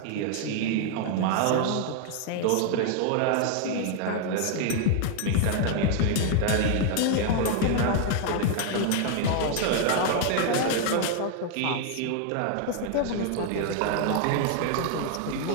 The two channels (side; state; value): both; different; correlation 0.00